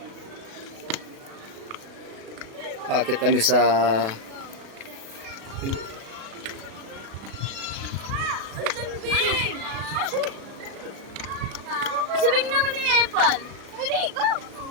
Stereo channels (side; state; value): left; late; 36 ms